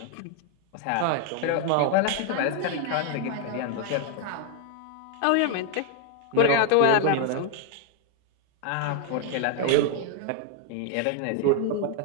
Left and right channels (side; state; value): both; different; correlation 0.01